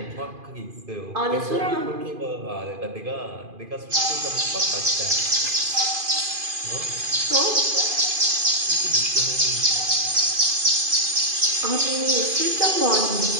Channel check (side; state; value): left; late; 2.5 ms